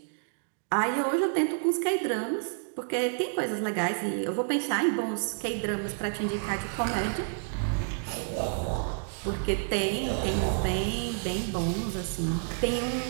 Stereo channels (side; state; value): left; silent; digital silence